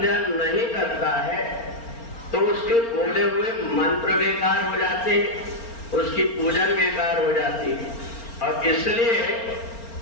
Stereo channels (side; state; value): right; late; 4.3 ms